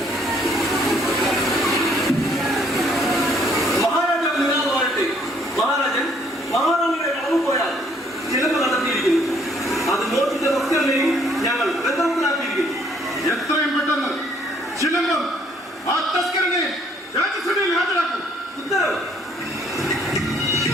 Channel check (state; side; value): normal; both; correlation 0.65